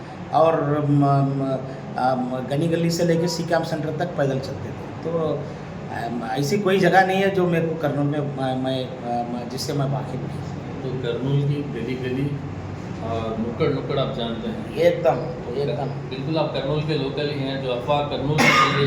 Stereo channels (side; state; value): both; identical; correlation 1.00